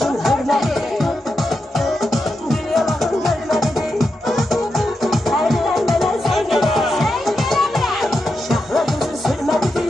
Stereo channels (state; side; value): normal; both; correlation 0.87